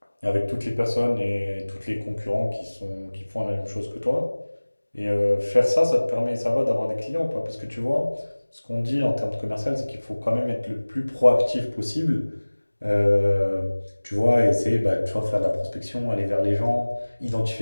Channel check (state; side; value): inverted; both; correlation -1.00